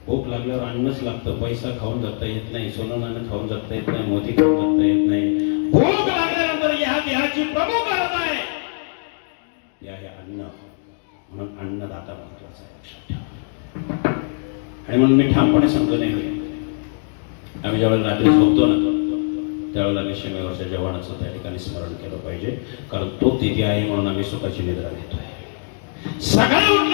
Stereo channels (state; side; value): silent; right; 61 dB below the other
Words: भूक लागल्यावर अन्नच लागतं. पैसा खाऊन जगता येत नाही, सोनं नाणं खाऊन जगता येत नाही, मोती खाऊन जगता येत नाही. भूक लागल्यानंतर ह्याची प्रमुख गरज आहे ते आहे अन्न. म्हणून अन्नदाता महत्वाचा आहे, लक्षात ठेवा. आणि म्हणून मी ठामपणे सांगतो नाही, आम्ही ज्यावेळेला रात्री झोपतो ना त्यावेळेला आम्ही सीमेवरच्या जवानाचं त्या ठिकाणी स्मरण केलं पाहिजे, कारण तो तिथे आहे म्हणून आम्ही सुखाची निद्रा घेतोय. सकाळी